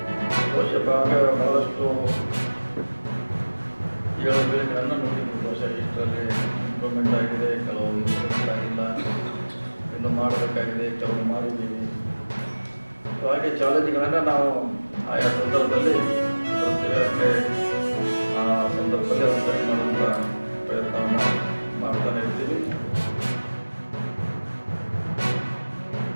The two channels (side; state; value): both; inverted; correlation -1.00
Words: ಬಹುಶಃ ಬಹಳಷ್ಟು ಏಳುಗಳನ್ನು ನೋಡಿದ್ದೀವಿ. ಬಹುಶಃ ಇಷ್ಟರಲ್ಲಿ ಇಂಪ್ರೂವ್ಮೆಂಟ್ ಆಗಿದೆ, ಕೆಲವು ಇಂಪ್ರೂವ್ಮೆಂಟ್ ಆಗಿಲ್ಲ, ಇನ್ನು ಮಾಡಬೇಕಾಗಿದೆ, ಕೆಲವು ಮಾಡಿದ್ದೀವಿ. ಹಾಗೆ ಚಾಲೆಂಜ್ಗಳನ್ನು ನಾವು ಆಯಾ ಸಂದರ್ಭದಲ್ಲಿ ಪ್ರತಿಯೊಂದಕ್ಕೆ ಆ ಸಂದರ್ಭದಲ್ಲಿ ಒಂದು ಸರಿ ಮಾಡುವಂಥ ಪ್ರಯತ್ನವನ್ನು ಮಾಡ್ತಾನೆ ಇರ್ತೀವಿ.